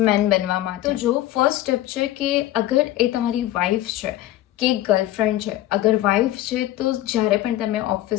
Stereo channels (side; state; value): right; quieter; 14.5 dB